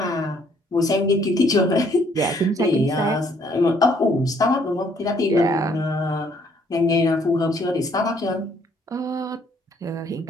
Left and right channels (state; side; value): normal; both; correlation 0.65